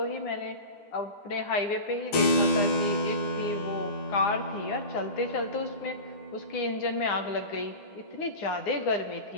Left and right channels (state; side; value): late; right; 9.8 ms